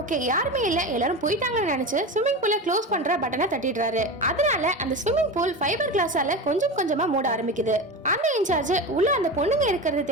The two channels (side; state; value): both; normal; correlation 0.25